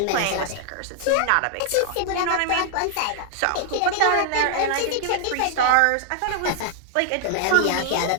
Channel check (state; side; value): different; both; correlation 0.00